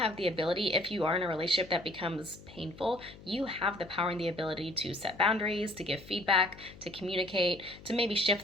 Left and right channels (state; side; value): noise; left; hum, 19 dB below the sound